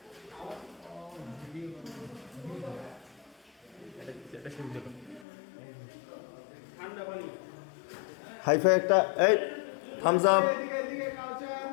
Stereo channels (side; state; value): right; drops out; at 5.2 s